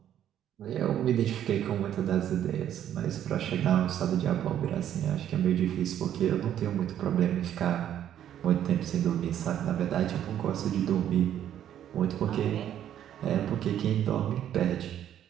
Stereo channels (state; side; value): quieter; left; 10.6 dB